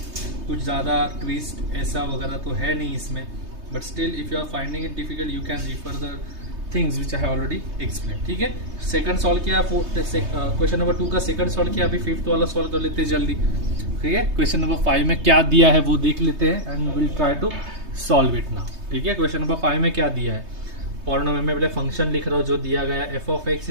कुछ ज़्यादा ट्विस्ट ऐसा वगैरह तो है नहीं इसमें. But still if you are finding it difficult you can refer the things which I have already explain. ठीक है, सेकंड सॉल्व किया, क्वेश्चन नंबर 2 का सेकंड सॉल्व किया, अभी फिफ्थ वाला सॉल्व कर लेते हैं जल्दी. ठीक है, क्वेश्चन नंबर 5 में क्या दिया है वो देख लेते हैं and will try to solve it now. ठीक है, क्वेश्चन नंबर 5 में क्या दिया है. पॉलिनोमियल में पहले फंक्शन लिख रहा हूँ जो दिया गया है. f of x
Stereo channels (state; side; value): late; left; 3.2 ms